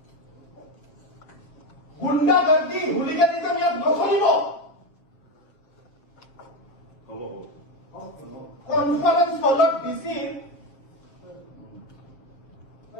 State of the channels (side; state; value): right; late; 7.6 ms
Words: গুণ্ডাগৰ্দি হুলিগানিজম ইয়াত নচলিব কনফাৰেন্স হলত ডিচিৰ